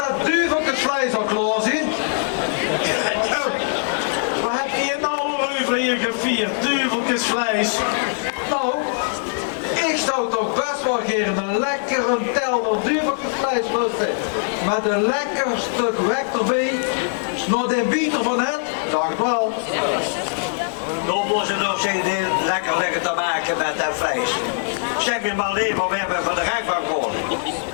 duiveltjesvlees al klaar zijn. Wat heb je nou over hier gevierd? Duiveltjesvlees. Nou, ik zou toch best wel geen een lekkere telner duiveltjesvlees lusten. Met een lekker stuk wek erbij. Nog de bieter van het, dacht wel. Dan moeten ze nog eens lekker te maken met dat vlees. Zeg me maar alleen maar, we hebben van de rechtbank gehoord.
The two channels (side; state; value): right; silent; digital silence